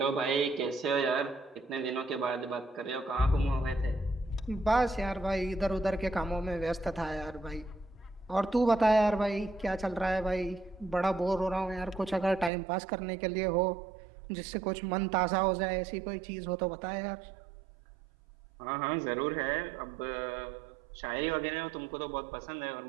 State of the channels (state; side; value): drops out; left; at 12.5 s